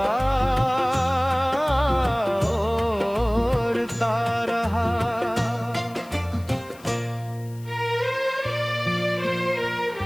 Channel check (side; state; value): left; noise; hiss, 24 dB below the sound